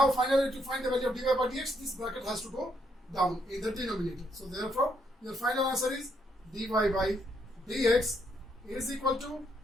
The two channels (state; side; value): normal; both; correlation 0.74